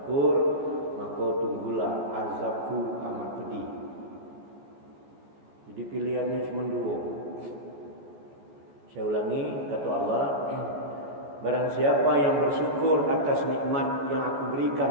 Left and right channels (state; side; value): late; left; 14 ms